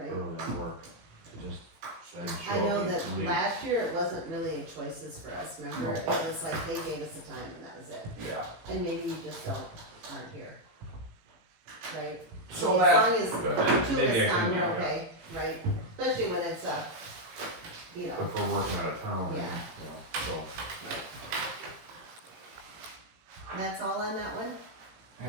early and work, to just show I know up that and leave. last year it wasn't really choices for us, remember? It was like they gave us the time and that was it. Yeah. And maybe you just aren't here. Right? So As that, long as But two maybe I this time, can, we're yeah. okay, right? Especially when it's you know, If we're working out of town, Yeah. you know, so. right. That's all on that one?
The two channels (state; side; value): late; left; 18 ms